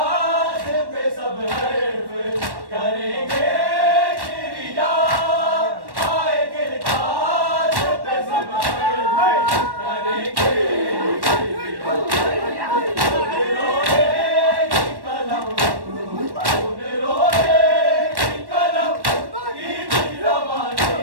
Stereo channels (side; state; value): left; late; 1.1 ms